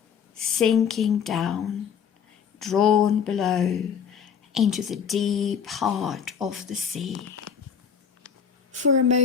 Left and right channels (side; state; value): right; quieter; 7.2 dB